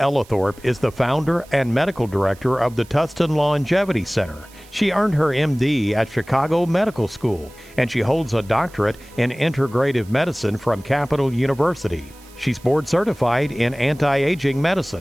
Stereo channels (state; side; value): noise; right; hiss, 24 dB below the sound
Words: is the founder and medical director of the Tustin Longevity Center. She earned her MD at Chicago Medical School, and she holds a doctorate in integrative medicine from Capital University. She's board certified in anti-aging